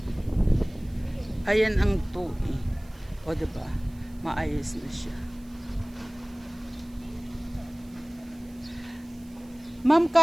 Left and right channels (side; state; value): right; noise; hiss, 27 dB below the sound